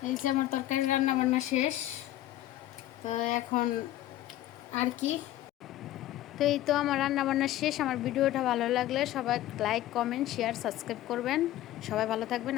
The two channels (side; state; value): right; quieter; 14.2 dB